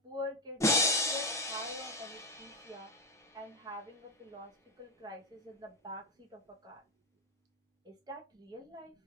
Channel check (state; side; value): normal; both; correlation 0.09